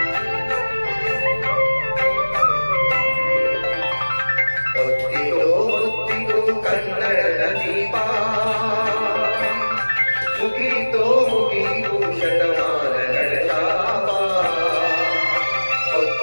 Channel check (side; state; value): both; inverted; correlation -1.00